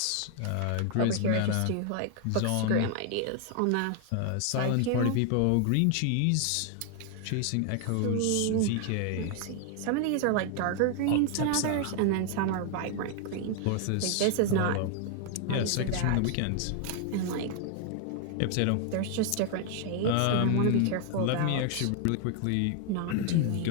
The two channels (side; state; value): both; different; correlation 0.00